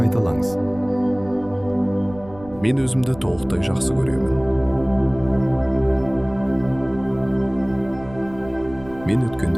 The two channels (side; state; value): right; noise; rumble, 19 dB below the sound